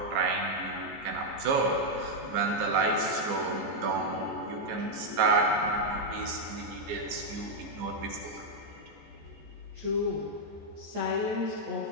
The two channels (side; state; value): left; late; 15 ms